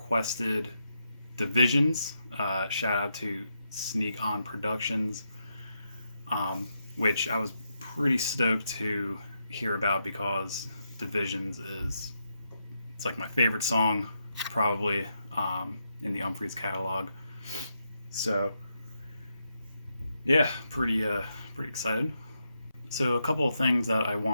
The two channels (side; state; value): both; inverted; correlation -0.83